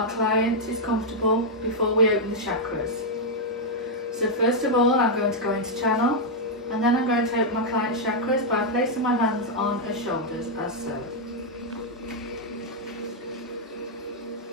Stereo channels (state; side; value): normal; both; correlation -0.03